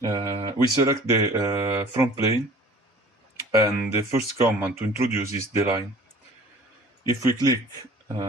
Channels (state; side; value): normal; both; correlation 0.48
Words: We select the front plane and the first command to introduce is the line. If we click